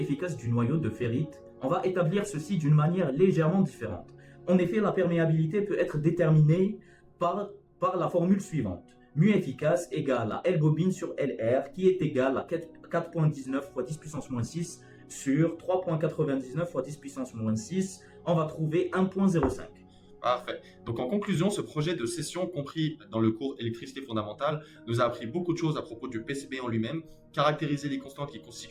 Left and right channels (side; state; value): both; identical; correlation 1.00